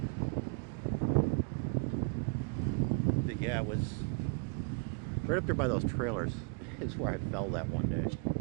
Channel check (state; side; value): quieter; left; 36.2 dB